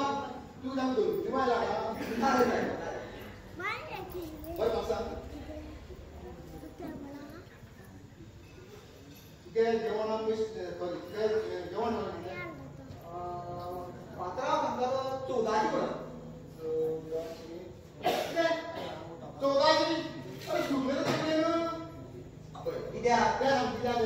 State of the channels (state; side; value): identical; both; correlation 1.00